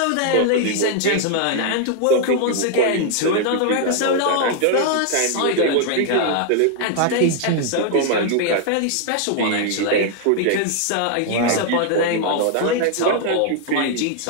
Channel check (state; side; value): different; both; correlation 0.00